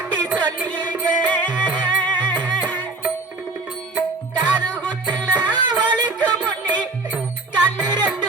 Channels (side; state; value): left; quieter; 3.3 dB